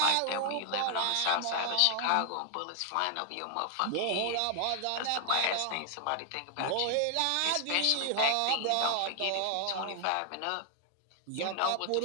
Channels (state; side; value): different; both; correlation 0.00